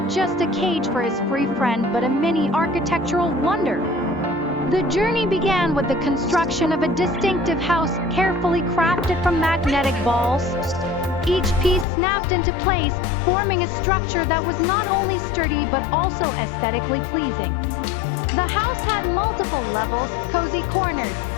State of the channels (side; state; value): right; drops out; at 11.9 s